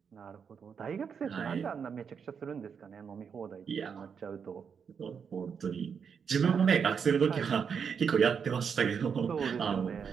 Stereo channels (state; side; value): quieter; left; 6.6 dB